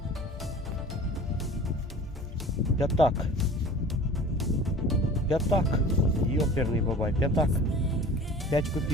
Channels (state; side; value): normal; both; correlation 0.42